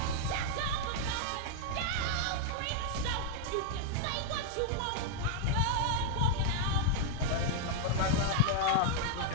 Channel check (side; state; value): both; different; correlation -0.01